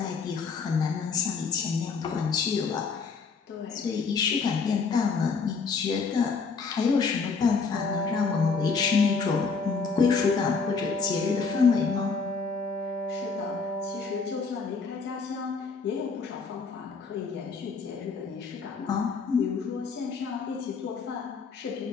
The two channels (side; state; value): right; quieter; 4.9 dB